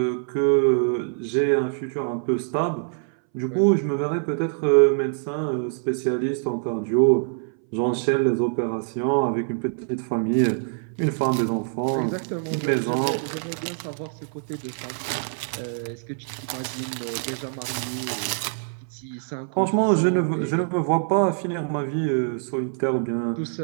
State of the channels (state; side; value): silent; left; 61 dB below the other